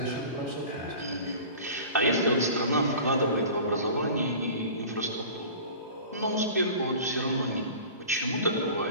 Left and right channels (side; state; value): both; inverted; correlation -0.40